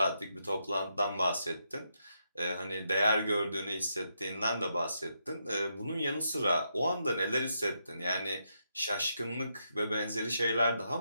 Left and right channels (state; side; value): inverted; both; correlation -0.81